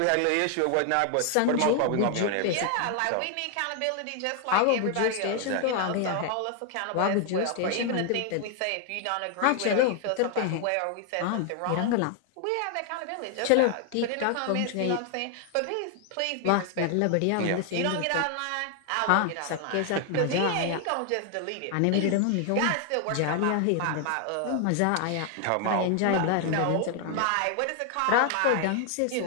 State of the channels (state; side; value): different; both; correlation 0.00